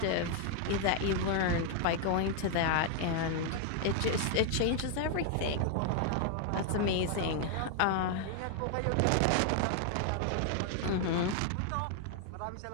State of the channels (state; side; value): different; both; correlation 0.00